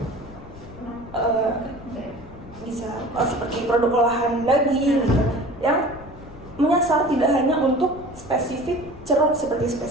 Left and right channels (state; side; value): noise; left; rumble, 18 dB below the sound